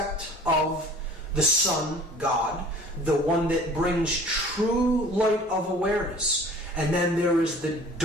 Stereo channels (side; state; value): both; normal; correlation 0.47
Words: of the sun god, the one that brings true light of awareness. And then there is the